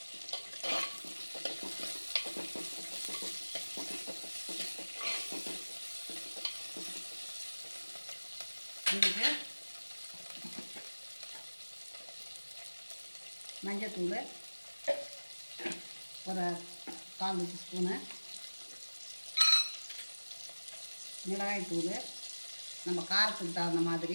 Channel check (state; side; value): inverted; both; correlation -1.00